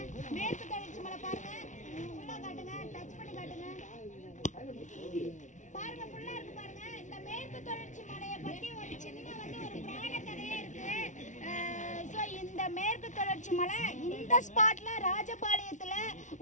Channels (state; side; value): late; right; 0.36 ms